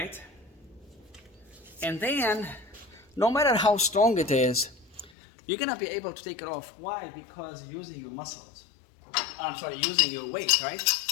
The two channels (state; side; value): drops out; right; at 5.1 s